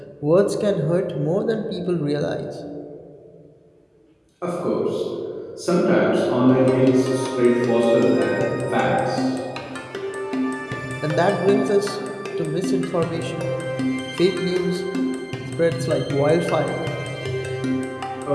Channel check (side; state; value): both; identical; correlation 1.00